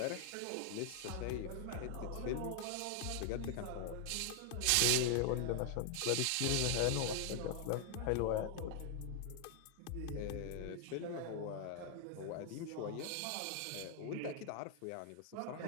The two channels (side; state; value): both; different; correlation 0.00